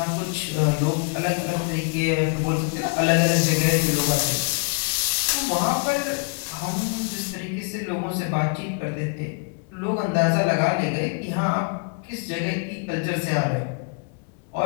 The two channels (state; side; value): quieter; right; 38.5 dB